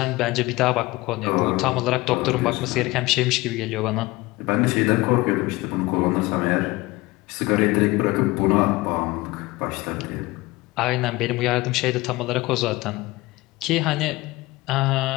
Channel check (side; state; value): right; quieter; 20.8 dB